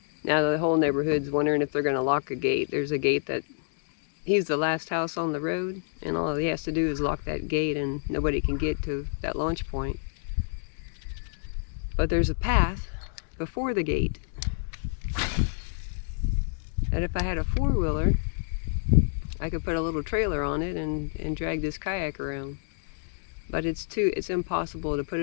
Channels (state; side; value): silent; right; digital silence